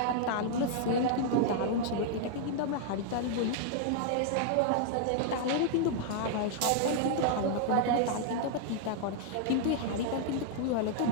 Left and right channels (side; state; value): both; different; correlation -0.01